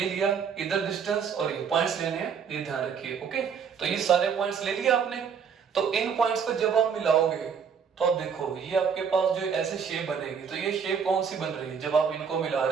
लिया, इधर डिस्टेंस और ये पॉइंट्स लेने हैं, ये ध्यान रखिए। ओके, तो ये सारे पॉइंट्स ले लिए आपने। तो इन पॉइंट्स को जब आप मिलाओगे तो आप देखो ये आपके पास जो ऐसे शेप बनेगी, तो ये शेप कौन सी बन रही है, जब आप इनको मिला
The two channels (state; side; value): quieter; left; 6.7 dB